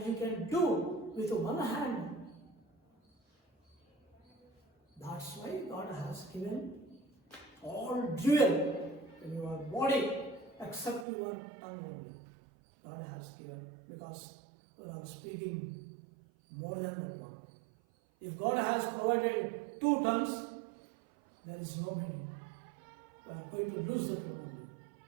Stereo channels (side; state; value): left; drops out; at 11.1 s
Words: you can do with one hand. That's why God has given all jewel in your body except your tongue only. God has given, because we are speaking more than that one. If God has provided 2 tongues, there is no meaning. We are going to lose the one only.